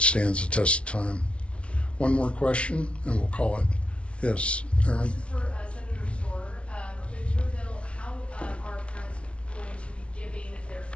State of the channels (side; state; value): right; late; 0.060 ms